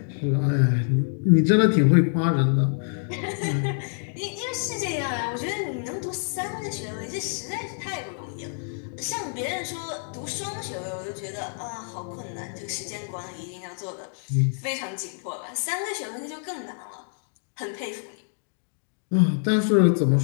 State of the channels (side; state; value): right; silent; 61 dB below the other